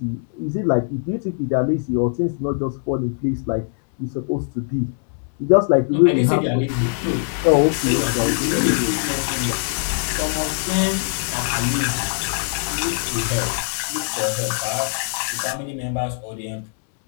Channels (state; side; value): silent; right; 64 dB below the other